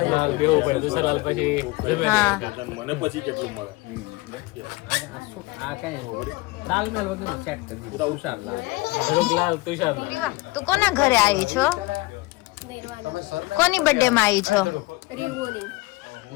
બેહવું પડે. દુસરાલાલ પછી જમે હા. મને પછી કેટલું મળે? આ કઈ તાલમેલ વગરનો સેટ કરી દીધું. તુષારલાલ ધરુકલાલ તુષારલાલ. રીવા, તું કોના ઘરે આવી છો? કોની બર્થડે માં આવી છો?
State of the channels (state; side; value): quieter; right; 22.0 dB